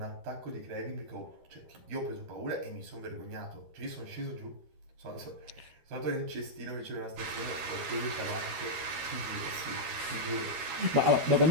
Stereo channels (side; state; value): left; late; 13 ms